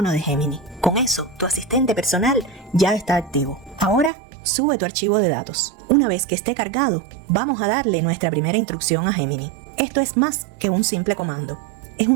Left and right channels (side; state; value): left; drops out; at 4.1 s